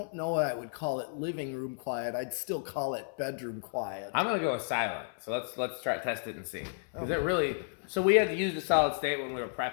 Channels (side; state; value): right; silent; 56 dB below the other